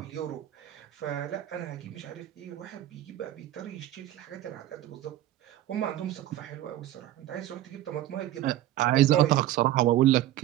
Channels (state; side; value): quieter; left; 13.6 dB